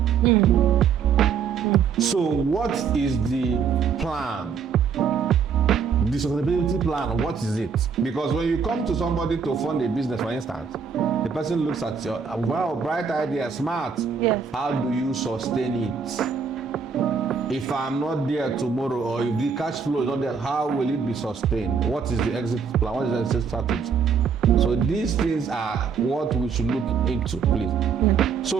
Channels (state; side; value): quieter; left; 6.3 dB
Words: So what is the plan? The sustainability plan, what is it? Because when you come to somebody to fund a business, for instance, The person looks at you, wow, bright idea, smart. Yes. How do you sustain it? If I'm not there tomorrow, or if the cash flow is not there, how will it be sustained? What is the exit plan? What is the exit strategy? So these things are what we should look into, please. Yeah.